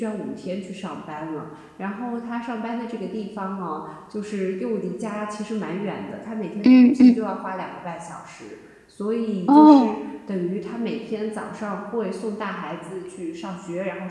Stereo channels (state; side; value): identical; both; correlation 1.00